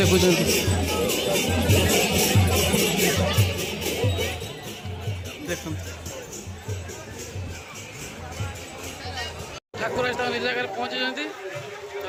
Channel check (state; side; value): identical; both; correlation 1.00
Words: ଦେଖନ୍ତୁ ଠାକୁର ଆସି ତାଙ୍କ ନିଜ ଜାଗାରେ ପହଞ୍ଚିଛନ୍ତି।